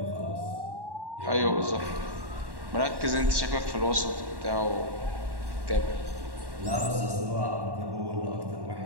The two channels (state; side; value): late; left; 1.1 ms